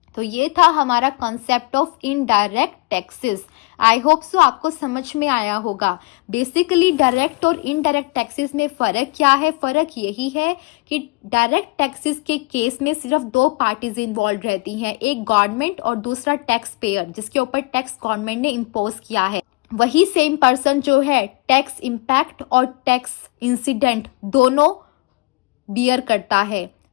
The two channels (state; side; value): quieter; right; 26.1 dB